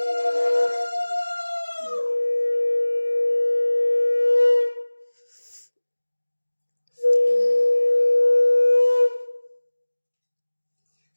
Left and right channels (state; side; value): inverted; both; correlation -1.00